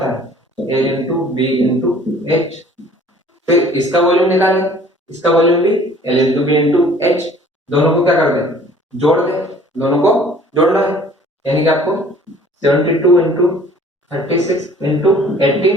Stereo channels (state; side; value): normal; both; correlation 0.52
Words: है, A into B into H. फिर इसका वॉल्यूम निकालें, इसका वॉल्यूम भी L into B into H. दोनों को क्या कर दें, जोड़ दें, दोनों को जोड़ना है। यानी कि आपको 72 इंटू 36 इंटू